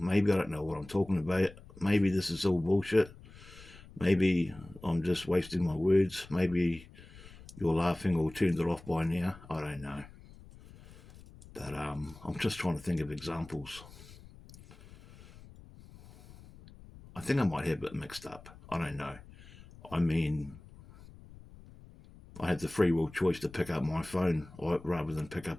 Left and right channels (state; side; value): noise; left; rumble, 20 dB below the sound